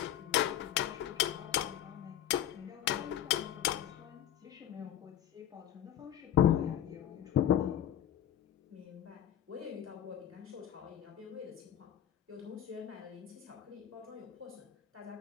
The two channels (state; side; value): quieter; right; 10.9 dB